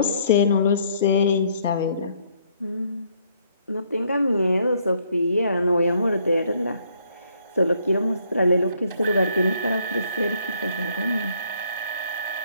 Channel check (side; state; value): both; inverted; correlation -0.67